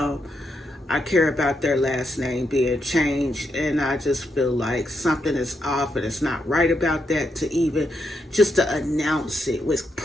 I care about their last name being changed, and I just feel like something is off and it's not right about that, to even just to announce it with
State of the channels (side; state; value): both; normal; correlation 0.81